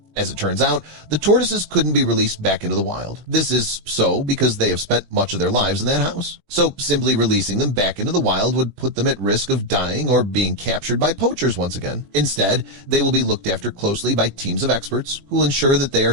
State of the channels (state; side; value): late; left; 20 ms